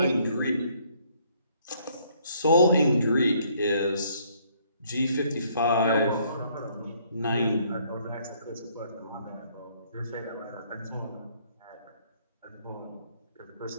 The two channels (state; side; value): inverted; both; correlation -0.65